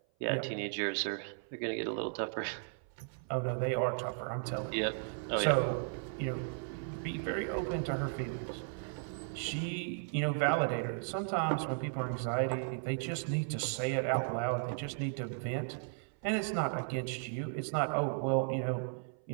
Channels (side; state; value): left; silent; 54 dB below the other